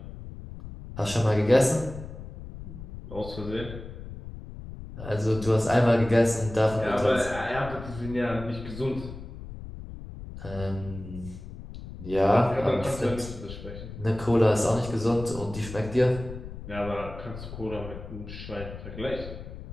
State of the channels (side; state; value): left; noise; rumble, 12 dB below the sound